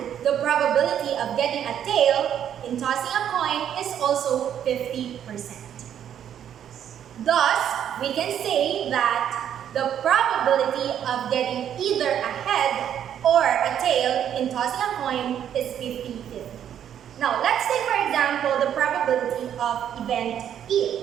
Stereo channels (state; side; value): quieter; left; 9.7 dB